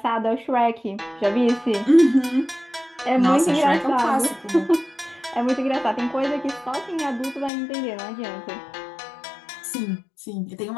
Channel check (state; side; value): drops out; right; at 7.5 s